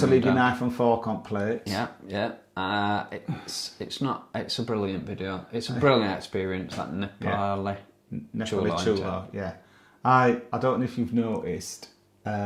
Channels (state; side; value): identical; both; correlation 1.00